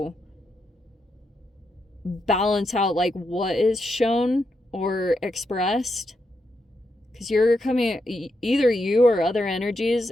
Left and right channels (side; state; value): both; normal; correlation 0.83